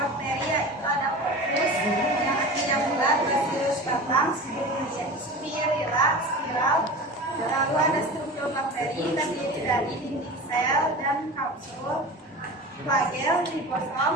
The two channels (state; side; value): normal; both; correlation 0.33